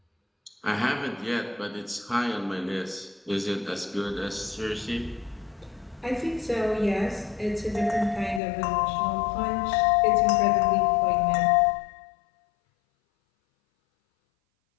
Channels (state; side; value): drops out; right; at 8.4 s